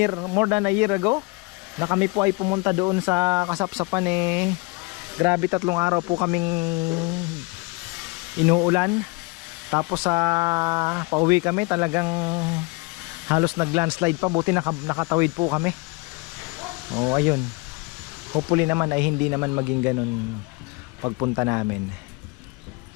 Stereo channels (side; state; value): right; quieter; 26.5 dB